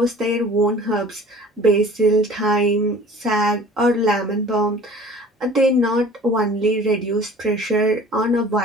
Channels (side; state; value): both; normal; correlation 0.46